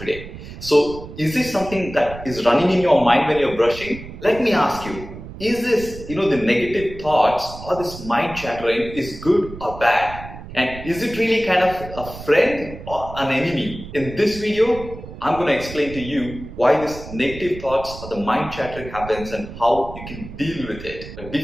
So is this something that is running in your mind when you're brushing? Let me ask you, is this, the negative thoughts or this mind chattering is good or bad? And is it really kind of a friend or an enemy? In this video, I'm going to explain to you why this negative thoughts or the mind chattering happens and how you can deal with it. But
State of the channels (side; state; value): right; noise; rumble, 13 dB below the sound